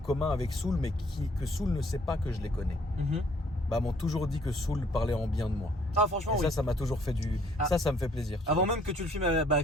avec Soul, mais que Soul ne sait pas que je les connais, bah, m'ont toujours dit que Soul parlait en bien de moi. Ah, franchement, Et oui. ça m'a toujours fait du. Ça me fait plaisir. tu Avant vois. même que tu le filmes,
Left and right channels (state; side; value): normal; both; correlation 0.62